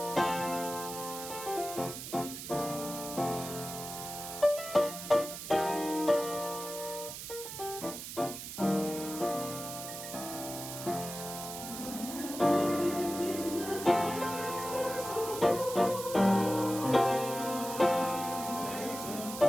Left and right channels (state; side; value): noise; right; hiss, 9 dB below the sound